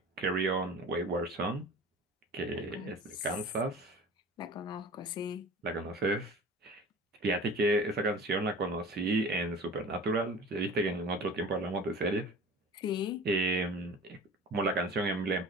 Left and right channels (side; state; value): both; normal; correlation 0.40